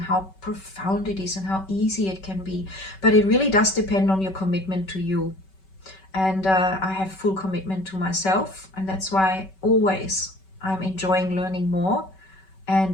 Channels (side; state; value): right; late; 5.3 ms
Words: profound it is and how easy it can be. But it really does depend on your commitment to you. And I have full commitment to myself, and that's why always I'm enjoying learning more